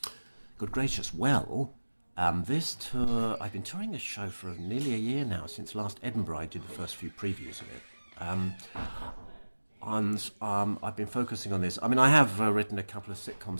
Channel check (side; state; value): both; inverted; correlation -1.00